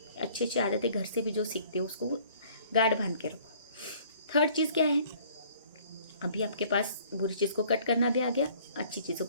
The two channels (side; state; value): both; inverted; correlation -0.56